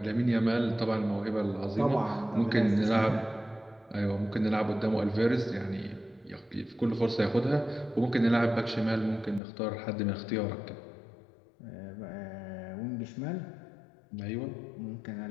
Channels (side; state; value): right; drops out; at 9.4 s